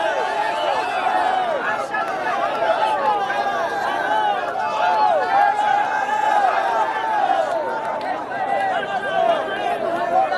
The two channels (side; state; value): both; identical; correlation 1.00